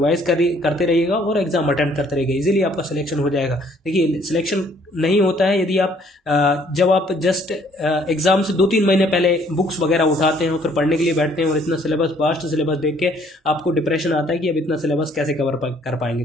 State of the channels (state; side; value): normal; both; correlation 0.62